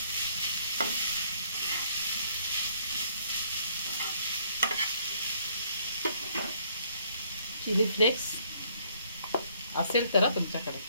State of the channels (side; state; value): both; inverted; correlation -0.65